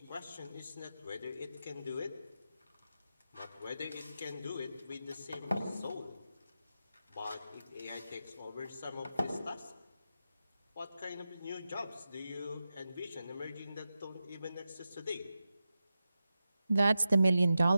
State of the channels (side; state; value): both; inverted; correlation -0.91